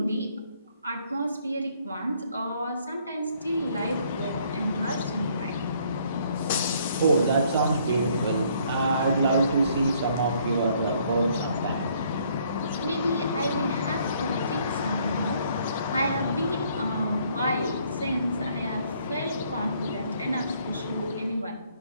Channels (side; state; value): both; inverted; correlation -0.65